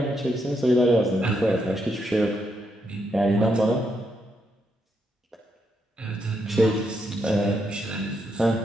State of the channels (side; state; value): both; normal; correlation 0.79